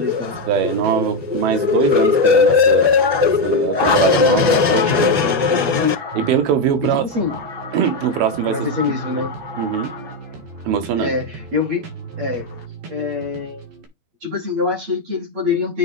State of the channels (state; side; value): late; left; 12 ms